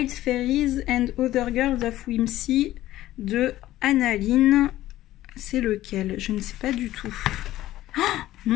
Fairies and Other Girls of Whimsy de Annaline. C'est lequel? Je ne sais pas du tout. Oh,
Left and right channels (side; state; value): right; quieter; 14.8 dB